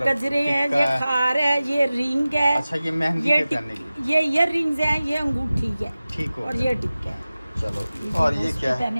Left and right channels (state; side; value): inverted; both; correlation -0.96